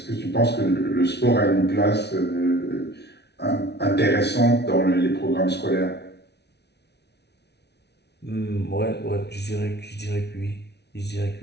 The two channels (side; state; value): right; late; 0.49 ms